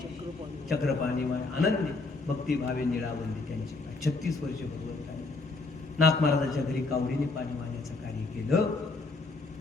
चक्रपाणी वाय, अनन्य भक्तिभावे निळावंदी त्यांची. 36 वर्ष भगवंताने नाथ महाराजांच्या घरी कावडीने पाणी वाहण्याचं कार्य केलं.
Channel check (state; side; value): quieter; right; 3.6 dB